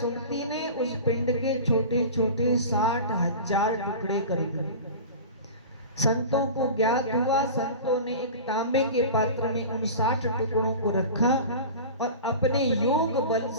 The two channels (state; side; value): inverted; both; correlation -0.34